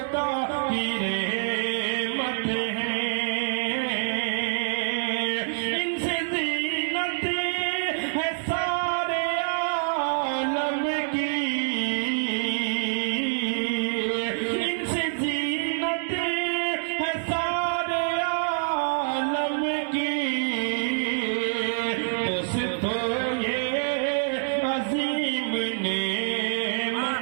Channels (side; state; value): left; silent; digital silence